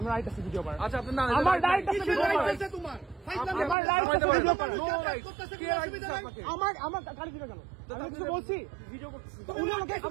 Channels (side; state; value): left; drops out; at 3.8 s